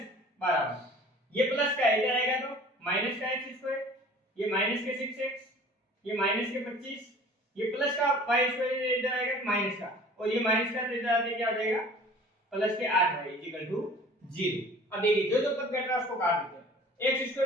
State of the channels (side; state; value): both; normal; correlation 0.47